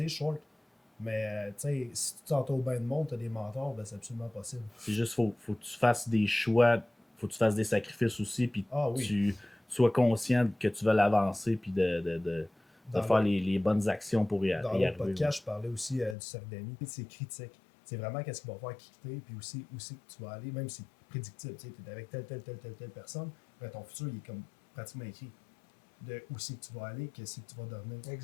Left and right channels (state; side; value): drops out; right; at 16.2 s